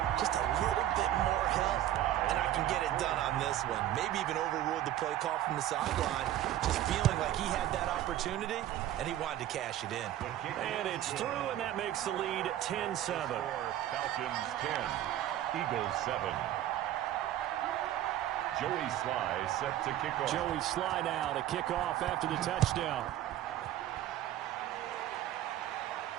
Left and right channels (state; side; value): quieter; left; 12.8 dB